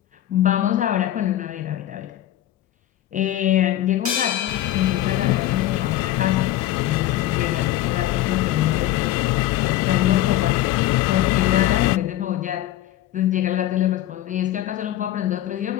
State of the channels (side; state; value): right; quieter; 13.8 dB